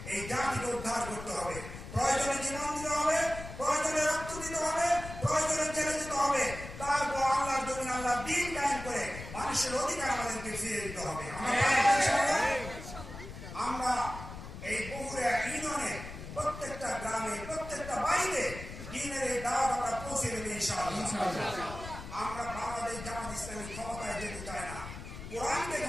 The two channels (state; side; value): noise; left; rumble, 11 dB below the sound